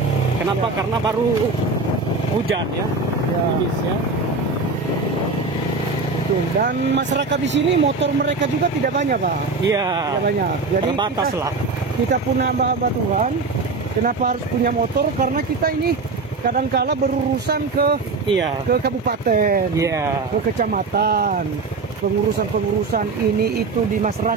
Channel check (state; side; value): quieter; left; 3.9 dB